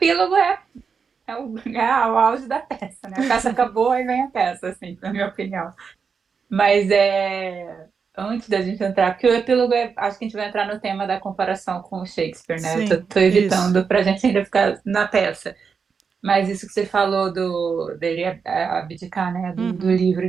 é o auge da peça, né? A peça acabou e vem a peça, assim, na minha opinião. Mas antes da gente entrar, porque o epílogo acho que a gente vai entrar no tema da comparação com o Shakespeare, né? Eu tô, sim, tô isso. evitando pra gente ainda ficar na peça. Mas isso que você falou dele abdicar, né? Do Uhum, livro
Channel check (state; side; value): quieter; left; 5.8 dB